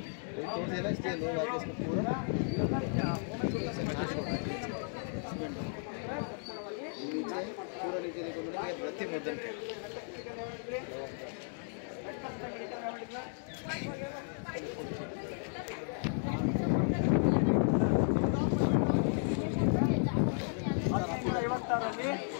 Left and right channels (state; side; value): silent; right; 55 dB below the other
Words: तोड़ देना इसलिए लोग आके इसको पूरा नीचे देखो मेरे प्रति मुद्दन है